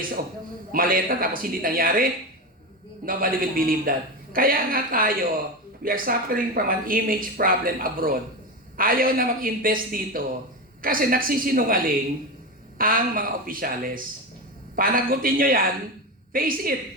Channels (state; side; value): normal; both; correlation 0.19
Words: of maleta tapos hindi nangyari. Nobody will believe that. Kaya nga tayo, we are suffering from an image problem abroad. Ayaw na mag-invest dito kasi nagsisinungaling ang mga opisyales. Panagutin nyo yan, face it.